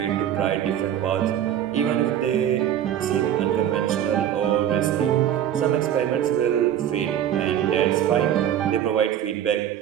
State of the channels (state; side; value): quieter; left; 10.5 dB